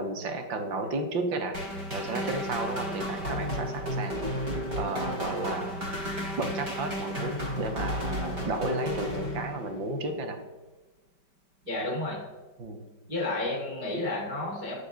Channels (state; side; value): late; left; 5.1 ms